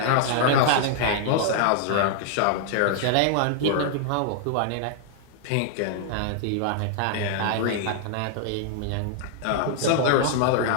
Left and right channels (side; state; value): both; different; correlation -0.01